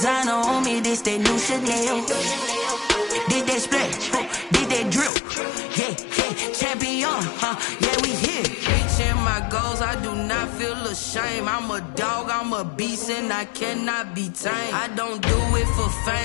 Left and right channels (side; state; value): right; drops out; at 5.1 s